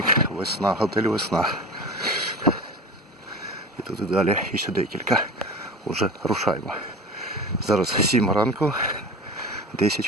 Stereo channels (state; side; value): normal; both; correlation 0.33